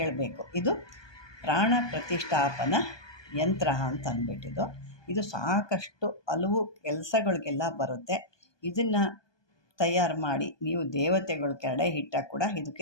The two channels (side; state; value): right; late; 1.2 ms